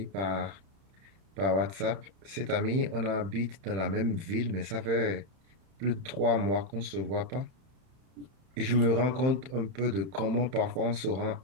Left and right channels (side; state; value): left; late; 31 ms